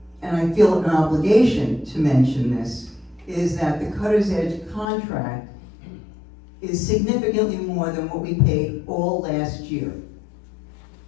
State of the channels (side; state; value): right; drops out; at 4.9 s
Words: and I feel an obligation to mention this, is that the Cutter's Edge contract is significantly more than what we paid all last year.